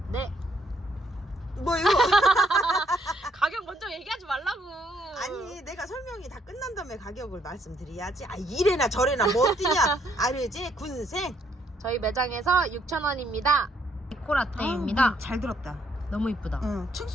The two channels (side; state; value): both; normal; correlation 0.70